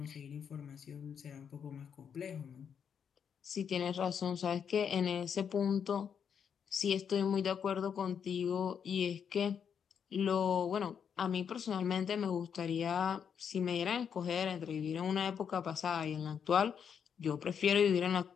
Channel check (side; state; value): right; quieter; 7.5 dB